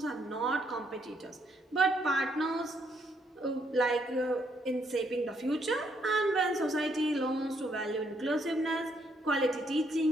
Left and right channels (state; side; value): normal; both; correlation 0.72